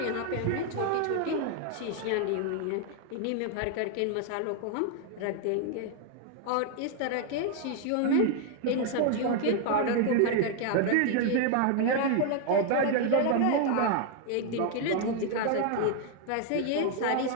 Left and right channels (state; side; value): different; both; correlation 0.00